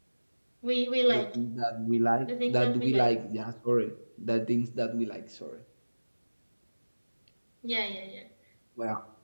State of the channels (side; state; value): both; inverted; correlation -1.00